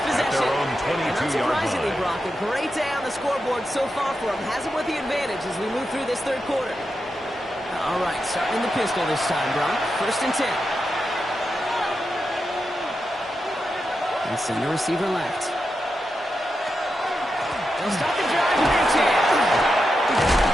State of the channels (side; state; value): both; normal; correlation 0.88